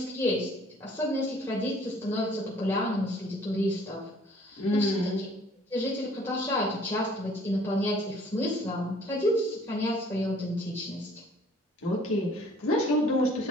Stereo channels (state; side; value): normal; both; correlation 0.56